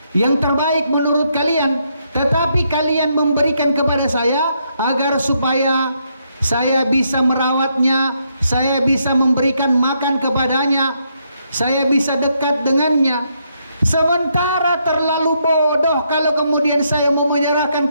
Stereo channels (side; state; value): both; inverted; correlation -0.76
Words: yang terbaik menurut kalian, tetapi kalian memberikan kepada saya agar supaya saya bisa merawatnya, saya bisa memberikan makan kepadanya, saya bisa dekat dengannya. Sementara terlalu bodoh kalau kemudian saya mau menyerahkan